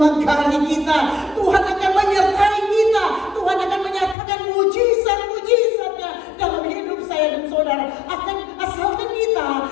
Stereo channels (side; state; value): right; drops out; at 4.2 s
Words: kita, Tuhan akan menyertai kita, Tuhan akan menyatakan mujizat-mujizatnya dalam hidup saya dan saudara. Asalkan kita